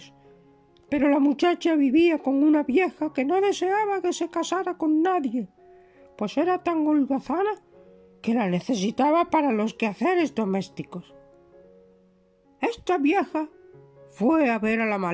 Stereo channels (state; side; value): identical; both; correlation 1.00